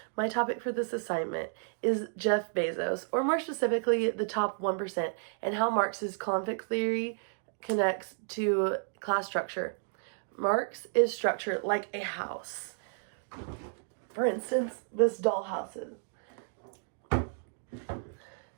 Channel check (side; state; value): left; silent; digital silence